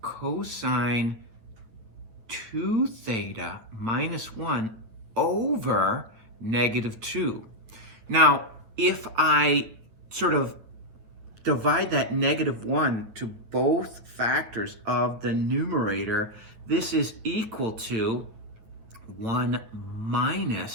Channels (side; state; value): left; late; 9.2 ms